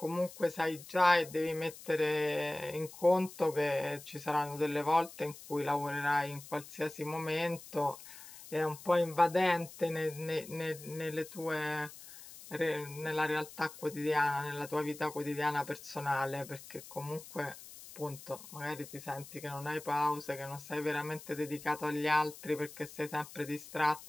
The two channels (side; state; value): left; noise; hiss, 16 dB below the sound